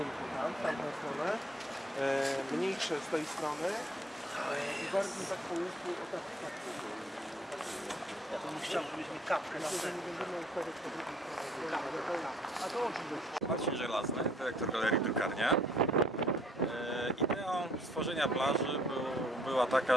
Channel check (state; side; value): normal; both; correlation 0.62